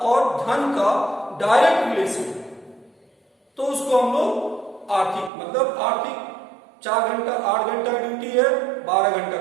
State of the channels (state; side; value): drops out; left; at 5.3 s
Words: और धन का डायरेक्ट रिलेशन है, तो उसको हम लोग आर्थिक, मतलब आर्थिक 4 घंटा 8 घंटा ड्यूटी है, 12